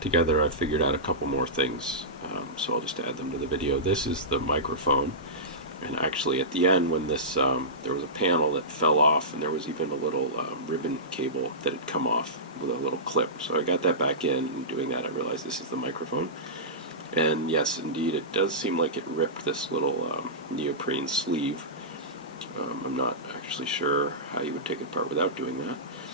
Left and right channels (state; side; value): normal; both; correlation -0.17